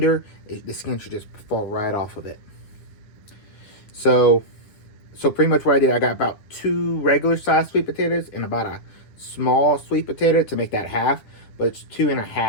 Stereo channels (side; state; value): right; late; 9.8 ms